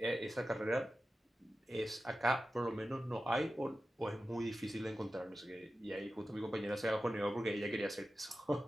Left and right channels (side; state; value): both; normal; correlation 0.93